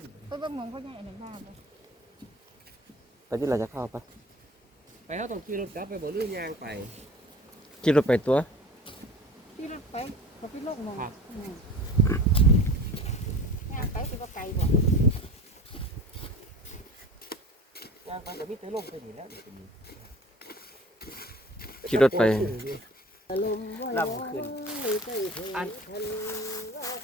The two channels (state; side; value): normal; both; correlation 0.40